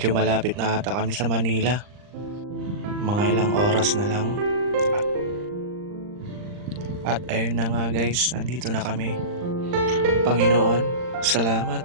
malapit na ata kami sa Manila. Mga ilang oras na lang. At ayun na nga, guys, nandito na kami. Panginoon, salamat.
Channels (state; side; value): late; left; 39 ms